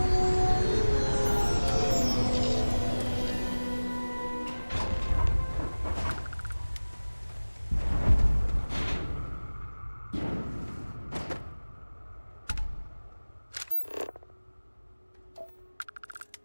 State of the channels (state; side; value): inverted; both; correlation -1.00